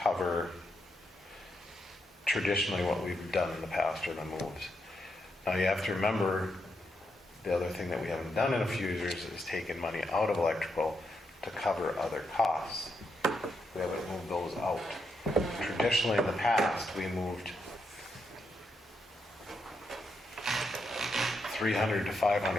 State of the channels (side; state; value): both; normal; correlation 0.81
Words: traditionally what we've done in the past or the moves. Now you have to remember, the other thing that we haven't done in a few years is taken money out of electrical to cover other costs. We haven't moved those out. Traditionally in the past, we moved $300,000 to